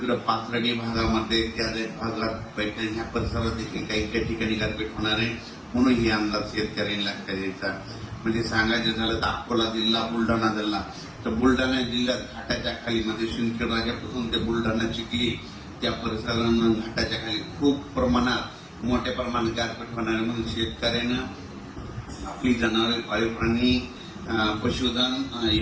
पाथर्डी भागामध्ये, त्या भागात पैठण ह्या परिसरात देखील काही ठिकाणी गारपीट होणार आहे. म्हणून हे अंदाज शेतकऱ्यांनी लक्षात द्यायचा. म्हणजे सांगायचं झालं तर अकोला जिल्हा, बुलढाणा जिल्हा, तर बुलढाणा जिल्ह्यात घाटाच्या खाली म्हणजे शिंदखेड राजापासून ते बुलढाणा, चिखली त्या परिसरांना घाटाच्या खाली खूप प्रमाणात मोठ्या प्रमाणात गारपीट होणार आहे. म्हणून शेतकऱ्यानं आपली जनावरे, पाळीव प्राणी, पशुधन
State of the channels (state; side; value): identical; both; correlation 1.00